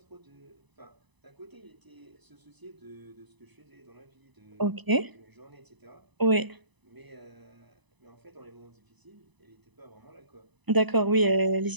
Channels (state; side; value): late; left; 1.0 ms